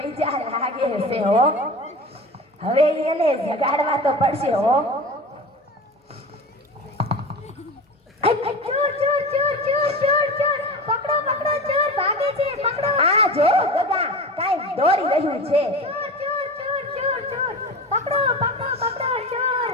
જા લાગે છે હો. હવે એને જગાડવા તો પડશે હો. ચોર ચોર ચોર ચોર ચોર ચોર પકડો પકડો ચોર ભાગે છે. પકડો. આ જો ગગા કાંઈ દોડી રહ્યું છે. ચોર ચોર ચોર ચોર ચોર પકડો પકડો પકડો ચોર.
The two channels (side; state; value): both; normal; correlation 0.30